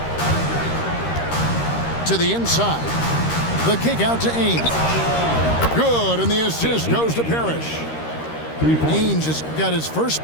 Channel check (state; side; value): late; right; 13 ms